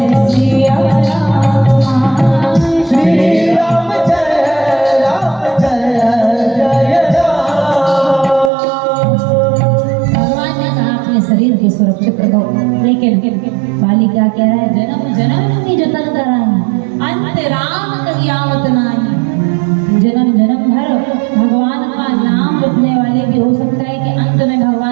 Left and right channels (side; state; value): left; drops out; at 8.5 s